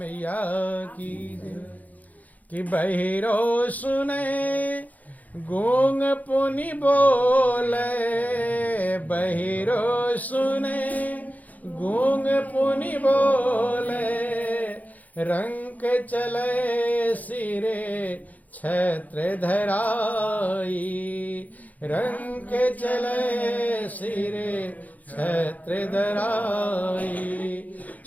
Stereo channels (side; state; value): right; late; 0.078 ms